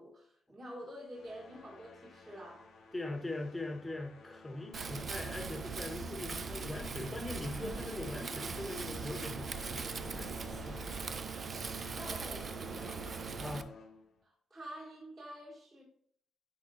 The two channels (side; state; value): both; normal; correlation 0.81